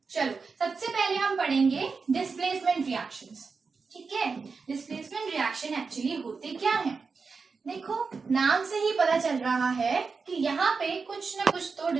चलो सबसे पहले हम पढ़ेंगे डिस्प्लेसमेंट रिएक्शंस। ठीक है, डिस्प्लेसमेंट रिएक्शन एक्चुअली होते क्या हैं? देखो नाम से ही पता चल रहा है कि यहाँ पे कुछ ना कुछ तो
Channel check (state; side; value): quieter; left; 4.8 dB